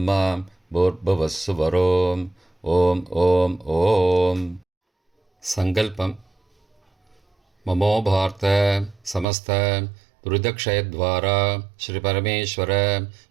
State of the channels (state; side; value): drops out; left; at 9.2 s